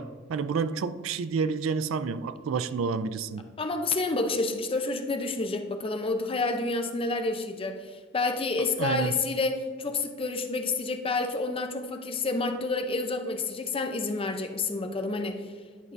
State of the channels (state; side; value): normal; both; correlation 0.33